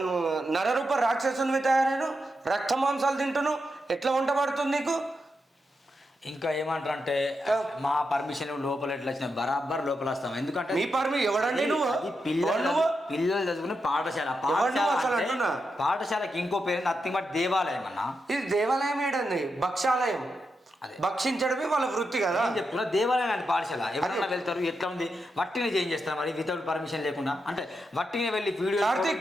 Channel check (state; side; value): normal; both; correlation 0.86